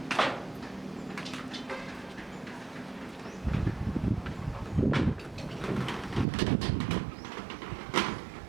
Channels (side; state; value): left; drops out; at 6.2 s